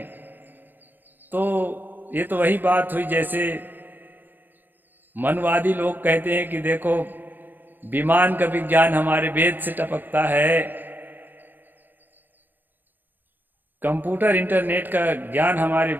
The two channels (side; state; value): left; late; 0.090 ms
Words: तो ये तो वही बात हुई जैसे मनवादी लोग कहते हैं कि देखो विमान का विज्ञान हमारे वेद से टपकता है, कंप्यूटर इंटरनेट का ज्ञान हमारे